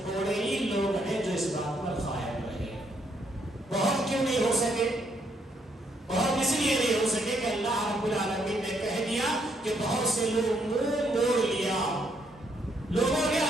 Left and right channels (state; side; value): normal; both; correlation 0.73